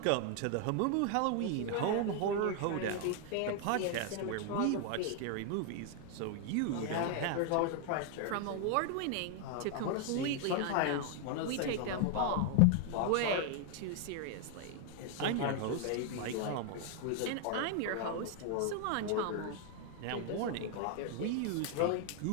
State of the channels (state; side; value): different; both; correlation 0.00